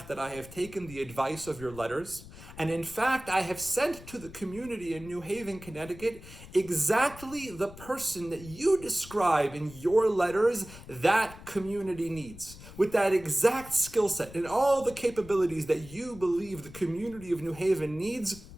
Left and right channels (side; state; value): left; noise; rumble, 17 dB below the sound